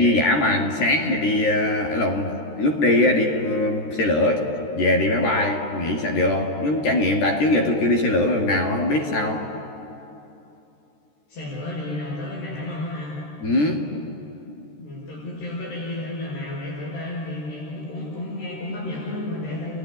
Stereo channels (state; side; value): late; right; 13 ms